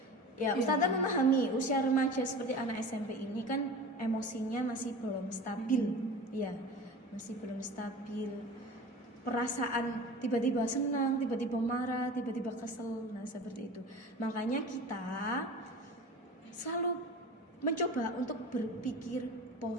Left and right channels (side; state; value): both; normal; correlation 0.36